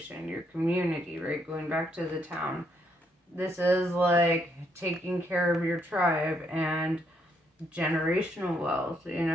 your community, right? Going back to the town. This is like taking care of your tribe and generational wealth. You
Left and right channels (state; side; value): normal; both; correlation 0.74